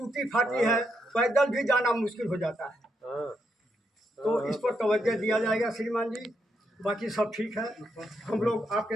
फाटी है, पैदल भी जाना मुश्किल हो जाता है। तो इस पर तवज्जो दिया जाएगा श्रीमान जी। बाकी सब ठीक है, हम लोग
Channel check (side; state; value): both; normal; correlation 0.80